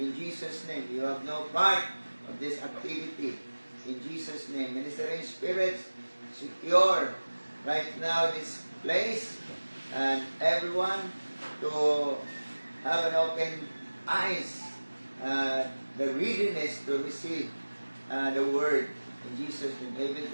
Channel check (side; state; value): both; inverted; correlation -1.00